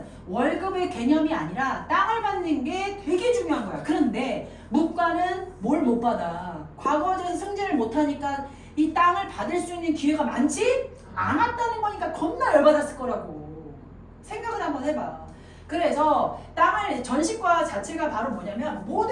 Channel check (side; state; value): both; identical; correlation 1.00